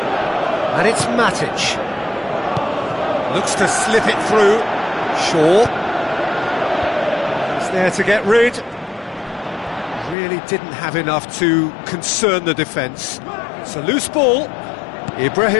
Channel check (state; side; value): drops out; right; at 10.2 s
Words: And it's Matic. Looks to slip it through. Shaw. He's there to get rid. Really didn't have enough to concern the defence. It's a loose ball.